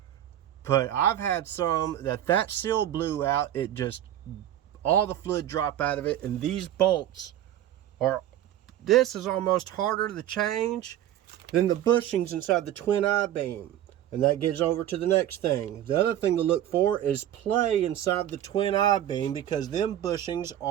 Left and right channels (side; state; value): left; quieter; 11.9 dB